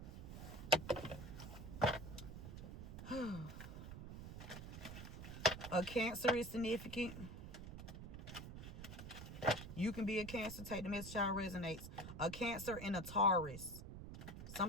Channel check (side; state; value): right; noise; rumble, 10 dB below the sound